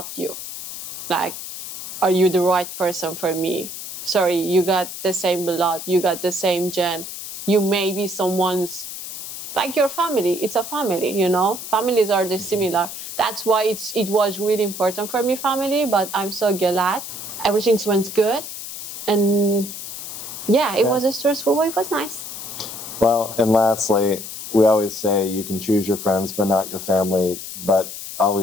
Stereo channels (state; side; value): noise; left; hiss, 9 dB below the sound